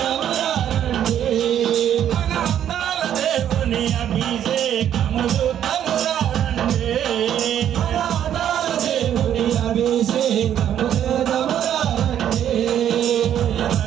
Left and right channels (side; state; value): left; quieter; 10.2 dB